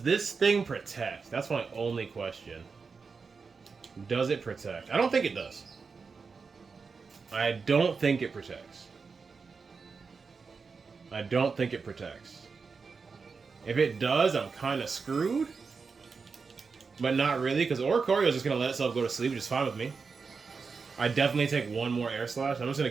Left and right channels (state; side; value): quieter; left; 5.0 dB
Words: this thing protect? That's my only question. Does it protect? I don't think it does. I don't think it protects. I don't think it protects. If it does, I'm kind of screwed. But not really, because Oricorio is just going to let itself go to sleep, which is fine with me. I definitely take one more air slash. I'm just going